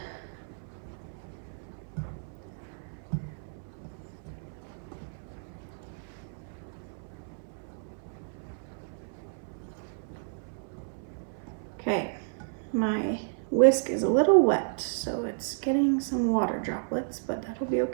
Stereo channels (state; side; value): silent; left; 56 dB below the other